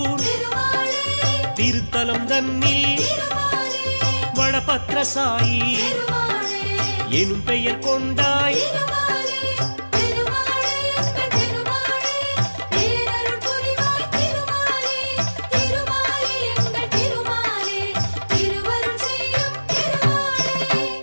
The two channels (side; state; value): both; inverted; correlation -1.00